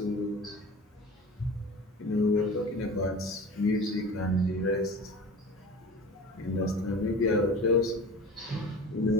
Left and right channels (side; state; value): both; normal; correlation 0.37